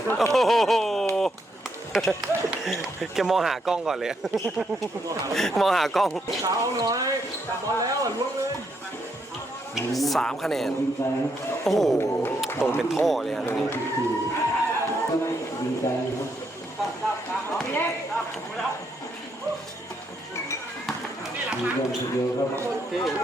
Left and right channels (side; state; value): both; normal; correlation 0.77